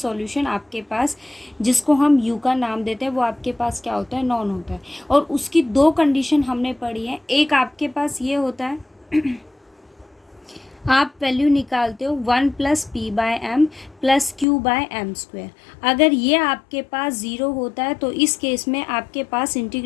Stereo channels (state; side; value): drops out; right; at 14.5 s